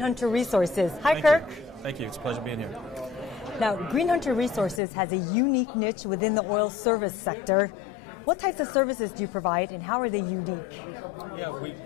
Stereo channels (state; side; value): drops out; right; at 4.8 s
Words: Resources. Hi, Kirk. Thank you. It's a pleasure being here. Now, GreenHunter Resources has a unique niche within the oil service sector. What types of services do you provide, and how are they unique? Yeah, we